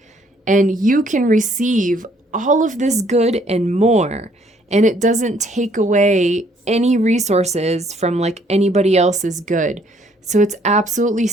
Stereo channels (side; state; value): both; normal; correlation 0.64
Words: And you can receive all of this good and more. And it doesn't take away any resources from like anybody else's good. So it's absolutely